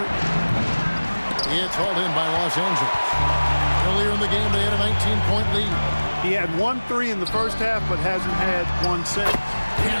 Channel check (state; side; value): inverted; both; correlation -1.00